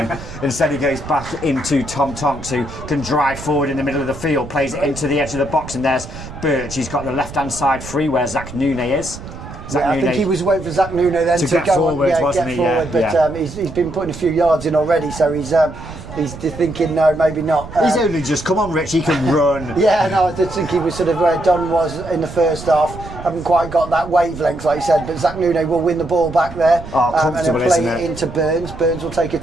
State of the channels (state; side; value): noise; right; rumble, 13 dB below the sound